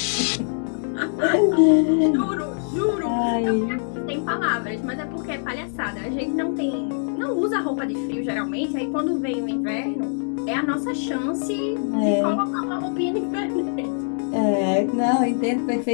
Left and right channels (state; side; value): silent; right; digital silence